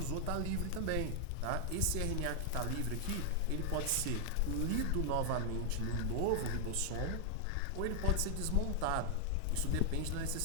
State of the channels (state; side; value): different; both; correlation 0.00